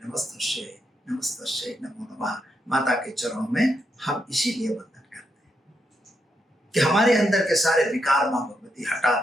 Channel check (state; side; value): normal; both; correlation 0.81